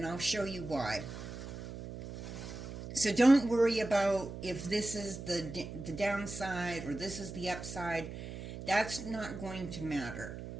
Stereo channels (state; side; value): noise; right; hum, 9 dB below the sound